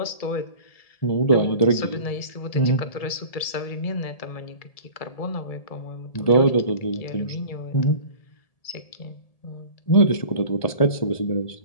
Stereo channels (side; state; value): right; late; 1.7 ms